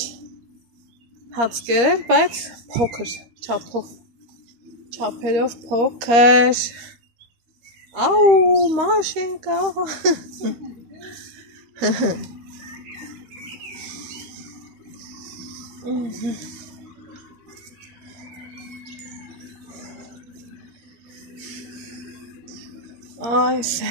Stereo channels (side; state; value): left; late; 13 ms